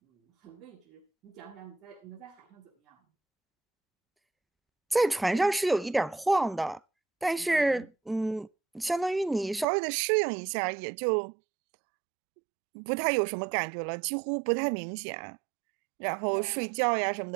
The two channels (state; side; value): drops out; left; at 9.7 s